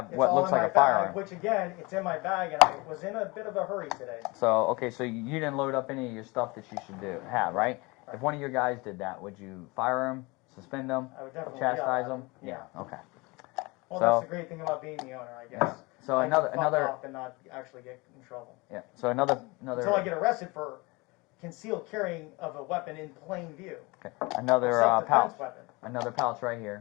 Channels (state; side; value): quieter; right; 25.2 dB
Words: it's what all looks in like my a firearm. bag, which again, it's in my bag, and I was in a bit of a hurry today. So okay, so you didn't load up any of your stuff that you should have, right? If one of your guys did that, would you fire him, suspend him, I would definitely chastise yell at him? him. Yeah. Okay. Well, So- that's the great thing about being the owner, I guess. So I another can fuck another off and not actually get in trouble. yeah. So another Until I get arrested for concealed carrying of a weapon in plain view. okay. Another Self-defense pouch. weapon. Another pouch right